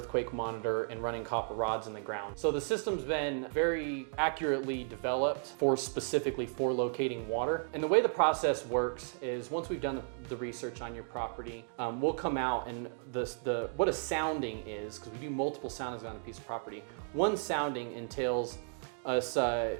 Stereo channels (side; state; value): left; silent; 55 dB below the other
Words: monitor, and running copper rods in the ground. So the system's been very accurately developed specifically for locating water. And the way the process works is once we've done the research on your property, we'll come out and what a sounding is, because we do multiple soundings on a piece of property. One sounding entails us